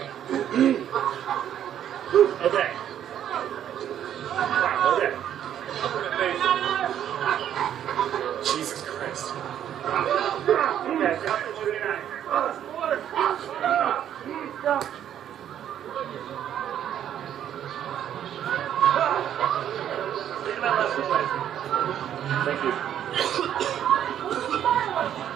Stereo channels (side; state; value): left; quieter; 10.2 dB